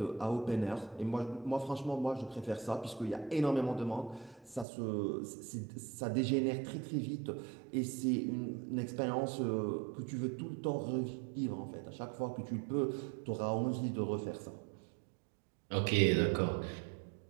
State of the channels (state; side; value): drops out; left; at 4.7 s